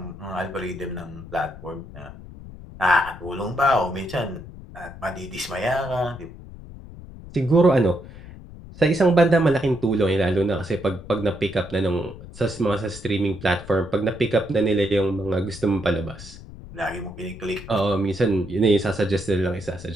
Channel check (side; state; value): left; noise; rumble, 15 dB below the sound